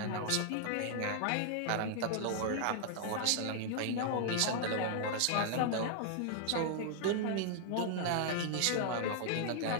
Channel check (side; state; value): both; different; correlation 0.00